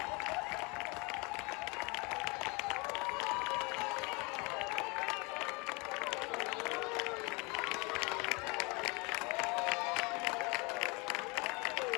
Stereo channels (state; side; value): quieter; right; 28.5 dB